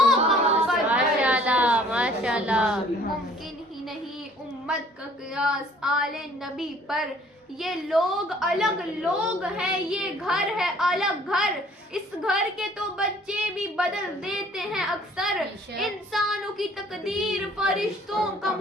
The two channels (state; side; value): normal; both; correlation 0.56